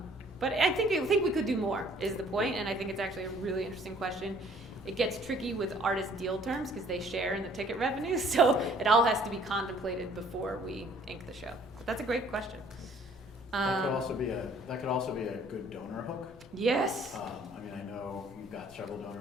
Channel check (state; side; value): normal; both; correlation 0.58